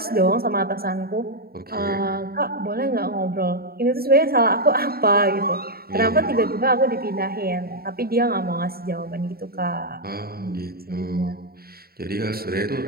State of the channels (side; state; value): left; late; 0.44 ms